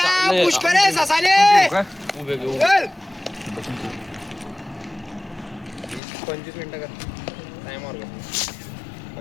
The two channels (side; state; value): right; drops out; at 6.0 s